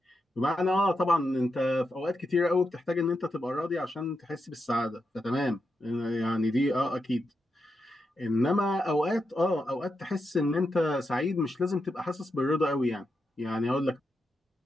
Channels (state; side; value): normal; both; correlation 0.86